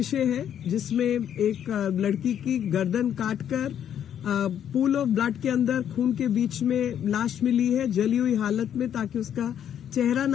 है जिसमें एक लड़की की गर्दन काटकर पूल ऑफ ब्लड के अंदर खून के बीच में लाश मिली है जली हुई हालत में, ताकि उसका चेहरा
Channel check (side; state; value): right; quieter; 9.5 dB